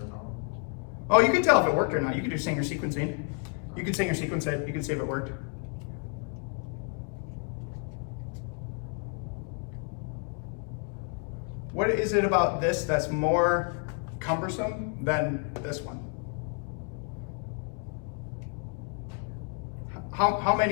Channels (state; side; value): quieter; right; 38.4 dB